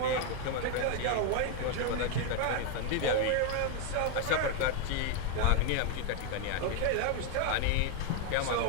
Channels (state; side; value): different; both; correlation 0.01